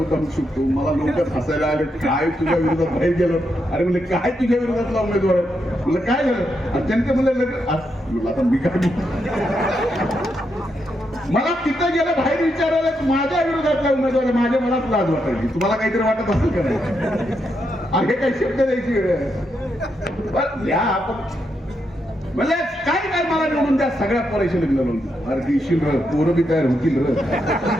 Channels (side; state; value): both; normal; correlation 0.82